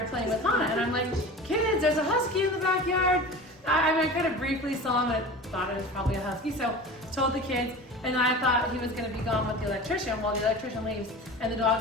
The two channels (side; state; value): both; normal; correlation 0.35